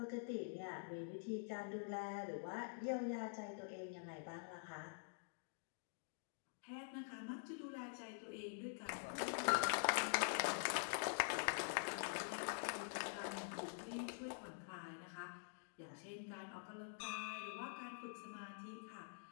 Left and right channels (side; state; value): right; silent; digital silence